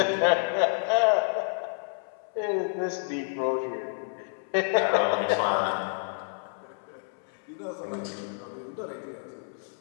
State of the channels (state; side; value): silent; right; 59 dB below the other